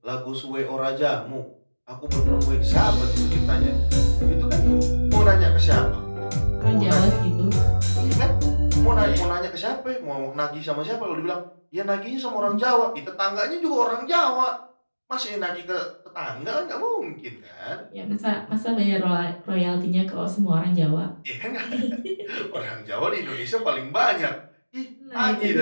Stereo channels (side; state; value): both; inverted; correlation -1.00